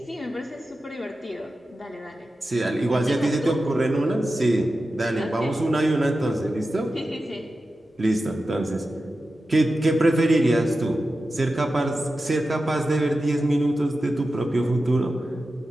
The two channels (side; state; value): both; normal; correlation 0.92